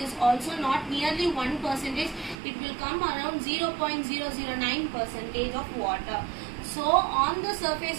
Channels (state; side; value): drops out; left; at 2.4 s